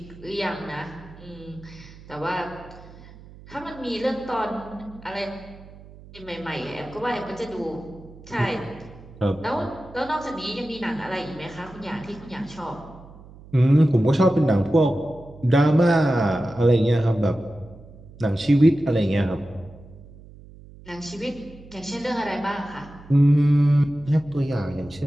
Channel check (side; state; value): right; noise; hum, 20 dB below the sound